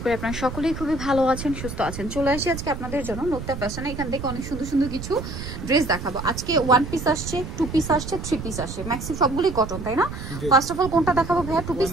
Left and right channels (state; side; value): noise; right; rumble, 8 dB below the sound